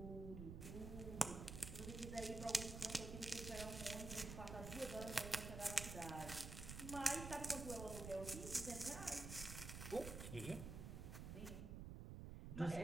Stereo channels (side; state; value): right; noise; rumble, 6 dB below the sound